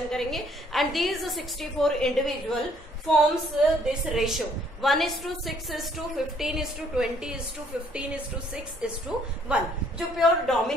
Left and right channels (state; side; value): normal; both; correlation 0.64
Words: करेंगे। And these 64 individual forms this ratio 1:6:15:20:15:6:1, जो प्योर